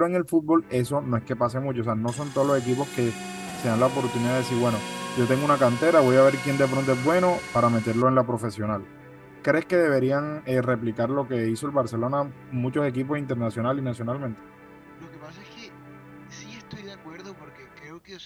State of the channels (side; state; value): both; identical; correlation 1.00